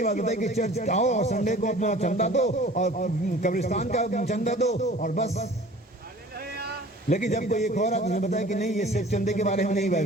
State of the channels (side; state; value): both; normal; correlation 0.46